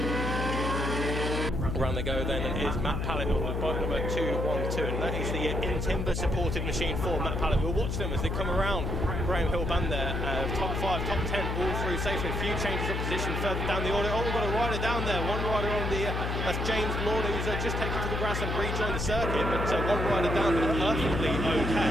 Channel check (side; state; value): left; noise; hum, 1 dB below the sound